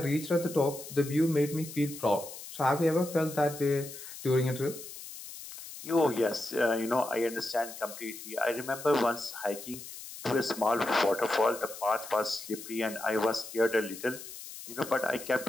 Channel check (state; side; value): noise; left; hiss, 12 dB below the sound